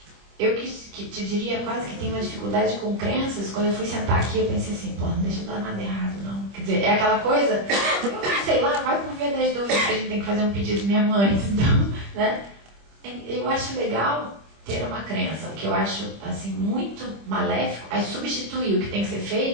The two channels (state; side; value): late; left; 25 ms